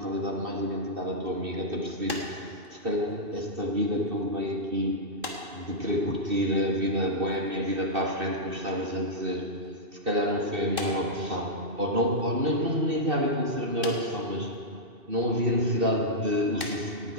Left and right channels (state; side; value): late; left; 2.5 ms